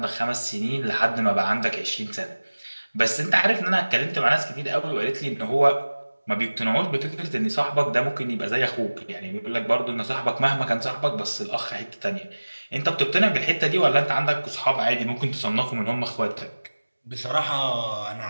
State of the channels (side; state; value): both; inverted; correlation -1.00